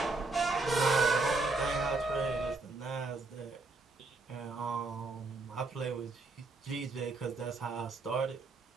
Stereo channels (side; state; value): left; quieter; 3.4 dB